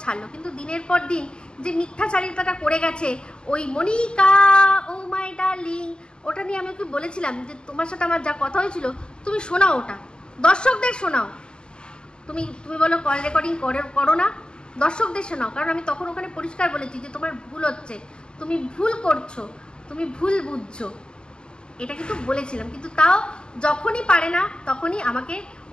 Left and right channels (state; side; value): late; right; 0.050 ms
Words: ছাড়লো। কিন্তু দিনের পর দিন যে মিথ্যাচারিতাটা করে গেছে ওই মনিকা ও মাই ডার্লিং, ওটা নিয়ে আমি ওকে বলেছিলাম যে তোমার সাথে আমার যা কথা হয়েছিল তুমি শোনাও, ওটা দর্শকদের শোনাও। তুমি বলো কল রেকর্ডিং করো না, দর্শকদের শোনাও। কারণ আমি তখন ওখানে পরিষ্কার বলেছি যে তোমার ভুল হচ্ছে, তুমি ভুল করছো, তুমি ভুল বুঝছো, এটা কিন্তু বলেছিলাম। কিন্তু তাও যখনই পারে না তখনই আমাকে